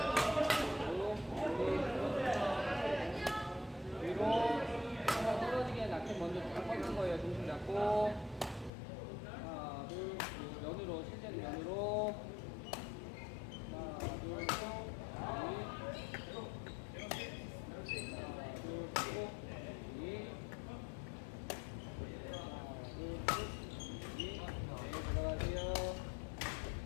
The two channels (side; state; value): right; drops out; at 8.7 s